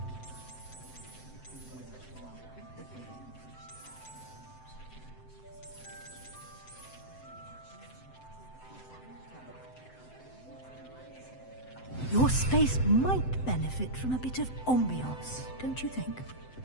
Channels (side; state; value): right; late; 7.8 ms